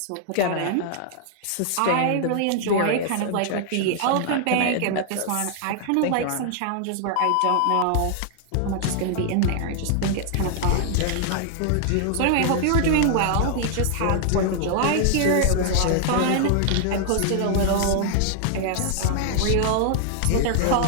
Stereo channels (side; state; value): both; different; correlation 0.00